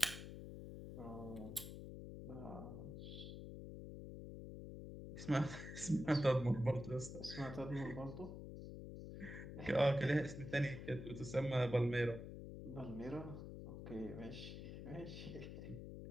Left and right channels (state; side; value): noise; left; hum, 9 dB below the sound